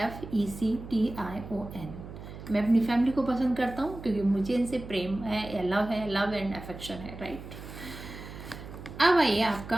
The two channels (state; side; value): noise; right; hum, 13 dB below the sound